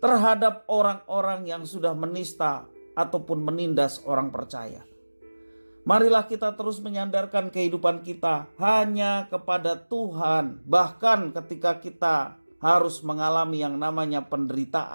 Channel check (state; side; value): inverted; both; correlation -1.00